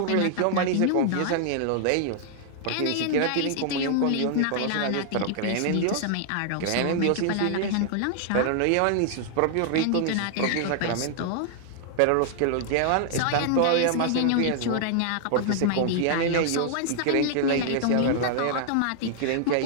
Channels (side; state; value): both; different; correlation 0.00